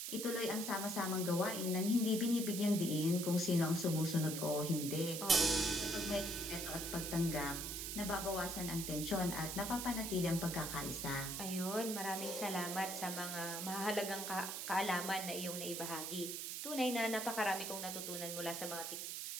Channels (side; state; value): right; noise; hiss, 4 dB below the sound